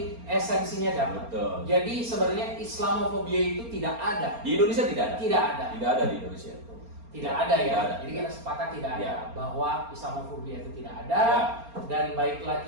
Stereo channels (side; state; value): left; late; 4.3 ms